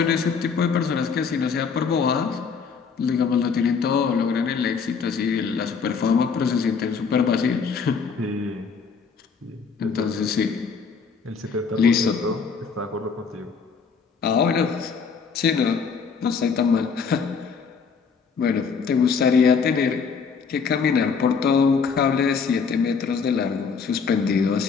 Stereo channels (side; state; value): right; quieter; 5.7 dB